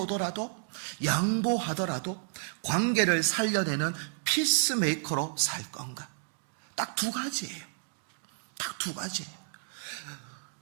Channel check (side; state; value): left; silent; digital silence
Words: 양보하더라도 관계를 살려내는 피스메이커로 살 건가? 딱 두 가지예요. 딱 두 가지예요.